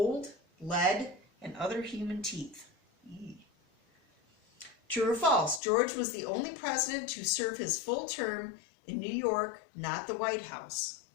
lead, and other human teeth. True or false? George was the only president to serve his full term in New York, not the White House.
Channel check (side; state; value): right; drops out; at 5.6 s